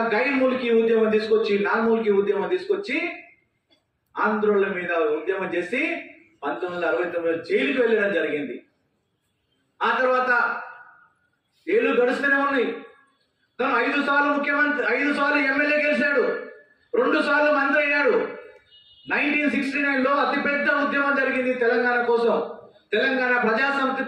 గైర్మూలికి ఉద్యమం తీసుకొచ్చి నార్మూలికి ఉద్యమం తీసుకొచ్చి ఆంధ్రోళ్ళ మీద ఉద్యమం చేసి 1969 జైలుకి వెళ్ళడం జరిగింది. ఆ తర్వాత ఏళ్ళు గడుస్తూనే ఉన్నాయి. తను 5 సార్లు ముఖ్యమంత్రి, 5 సార్లు ఎమ్మెల్యే గెలిచాడు, 2 సార్లు మంత్రి అయ్యాడు. 1969లో అతిపెద్ద ఉద్యమం జరిగింది తెలంగాణ కోసం. తెలంగాణ ప్రజాసమితి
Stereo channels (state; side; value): identical; both; correlation 1.00